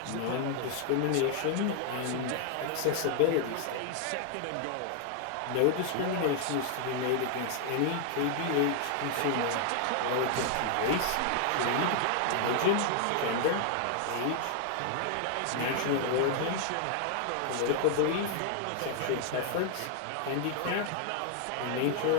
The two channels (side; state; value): both; different; correlation 0.00